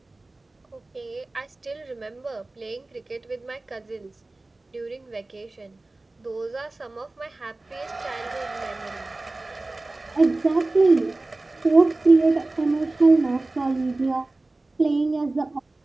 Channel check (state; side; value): quieter; left; 3.0 dB